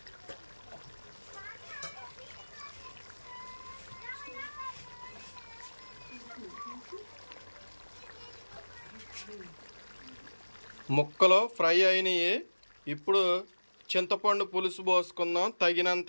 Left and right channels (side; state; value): both; inverted; correlation -1.00